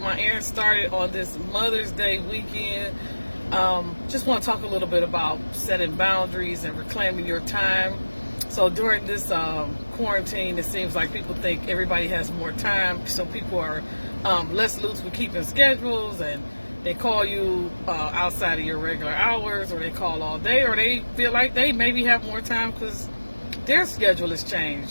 my errands started on this Mother's Day weekend, just want to talk a little bit about setting boundaries and reclaiming your time. So during this quarantine, it seems like people think everybody has more time, so people are less loose with keeping schedules, and they call you outside of your regular hours, or they call all day, or they feel like they maybe have more time because their schedule has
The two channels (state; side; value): inverted; both; correlation -1.00